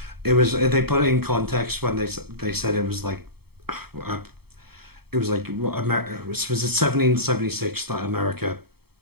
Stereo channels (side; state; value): left; late; 0.96 ms